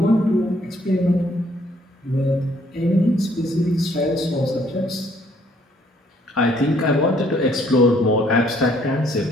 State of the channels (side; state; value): both; normal; correlation 0.64